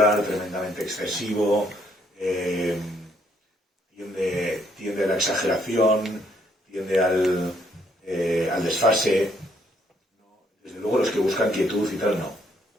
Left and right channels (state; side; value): normal; both; correlation 0.69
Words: tremendamente excesivo. Tiende a la exageración, tiende al desfase. Desde luego los que buscan quietud y tal, no